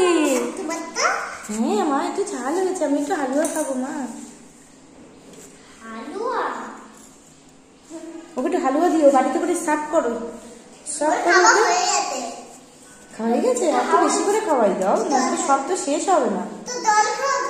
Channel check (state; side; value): identical; both; correlation 1.00